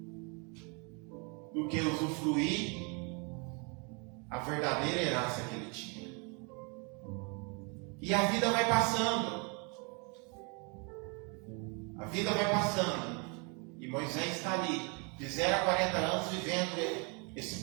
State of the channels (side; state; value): left; quieter; 33.7 dB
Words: do que usufruir a verdadeira herança que ele tinha. E a vida vai passando. A vida vai passando. E Moisés está ali, de 0 a 40 anos, vivendo